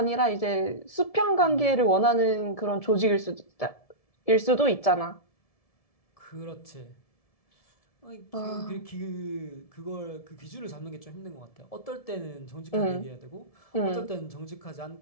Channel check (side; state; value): right; late; 1.7 ms